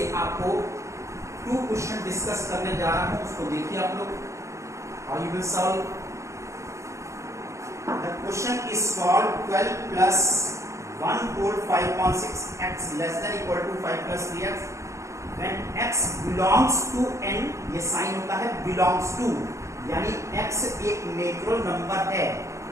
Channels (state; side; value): late; left; 0.14 ms